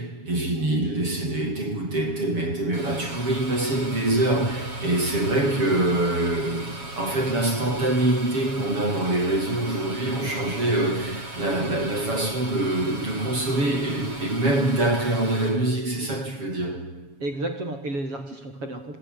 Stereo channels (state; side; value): late; left; 7.2 ms